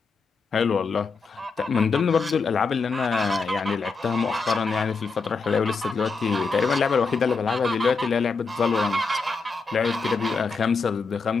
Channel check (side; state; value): right; quieter; 4.5 dB